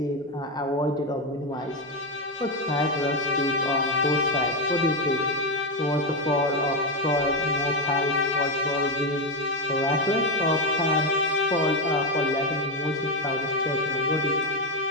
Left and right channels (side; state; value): both; normal; correlation 0.09